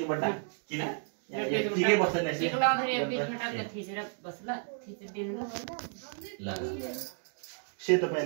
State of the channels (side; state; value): left; silent; 56 dB below the other